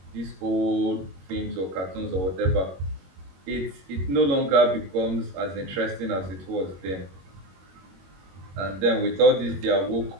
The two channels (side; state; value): left; late; 21 ms